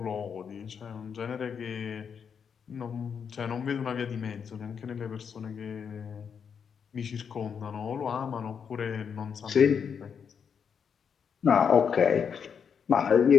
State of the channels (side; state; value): right; quieter; 6.9 dB